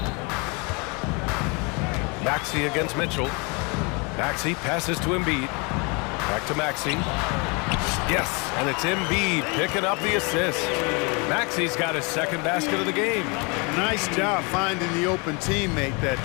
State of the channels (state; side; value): quieter; right; 30.9 dB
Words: Maxey against Mitchell. Maxey passes to Embiid. Back to Maxey. Yes, and it's Embiid picking up the assist. Maxey's got his second basket of the game. Nice job finding the open teammate that